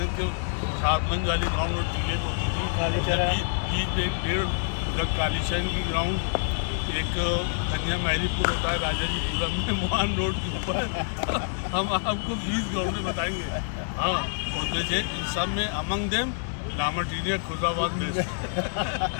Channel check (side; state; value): right; silent; digital silence